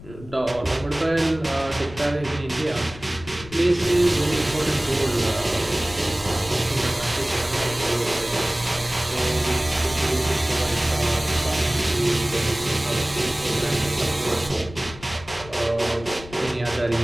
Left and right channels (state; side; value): noise; left; rumble, 17 dB below the sound